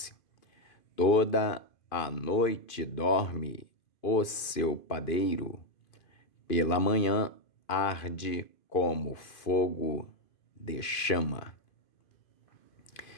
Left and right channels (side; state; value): right; late; 2.5 ms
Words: toda a noite dorme o seu padeiro, pela manhã arde como fogo de chama.